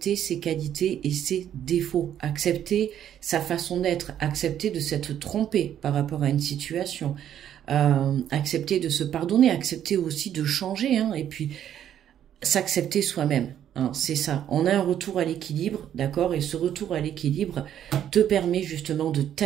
ses qualités et ses défauts. Accepter sa façon d'être. Accepter de s'être trompé par rapport à une situation. Accepter de se pardonner. Accepter aussi de changer. Hein, et puis, s'accepter soi-même. Hein, c'est ça, on a un retour à l'équilibre, d'accord? Et ce retour à l'équilibre te permet justement de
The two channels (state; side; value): quieter; left; 10.3 dB